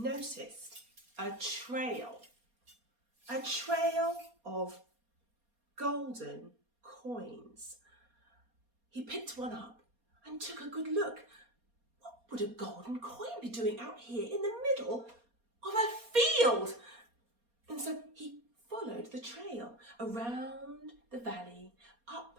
a trail of golden coins. He picked one up and took a good look. What would a golden coin be doing out here in the middle of a field? And so he followed the trail around the valley, up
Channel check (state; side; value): late; left; 4.2 ms